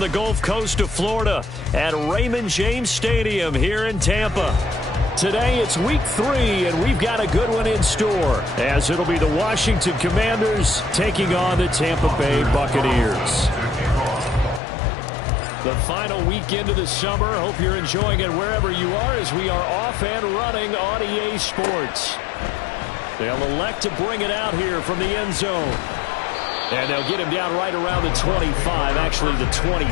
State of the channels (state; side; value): drops out; right; at 14.6 s